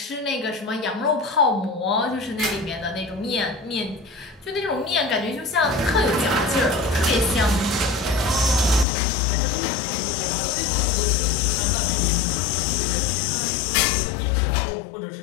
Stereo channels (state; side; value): drops out; right; at 8.8 s